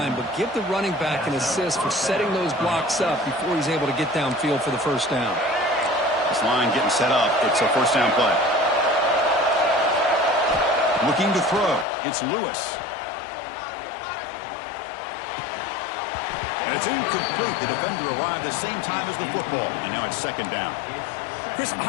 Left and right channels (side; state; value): right; drops out; at 11.9 s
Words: but give the running back an assist for setting those blocks up before he's able to get downfield for the first down. This line getting set up. It's a first down play. Looking to throw. It's Lewis. And it's incomplete. The defender arrived the same time as the football. And now it's second down. Chris,